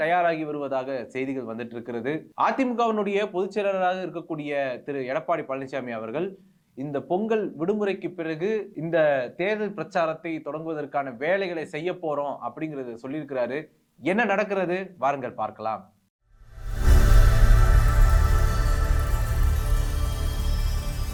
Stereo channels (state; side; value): identical; both; correlation 1.00